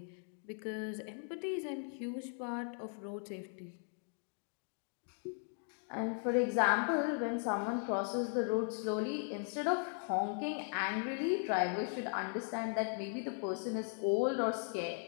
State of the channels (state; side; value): silent; right; 52 dB below the other